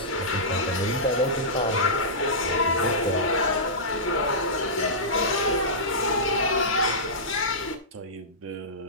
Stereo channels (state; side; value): normal; both; correlation -0.16